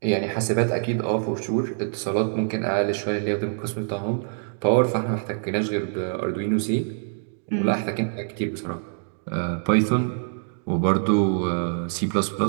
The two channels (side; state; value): left; silent; digital silence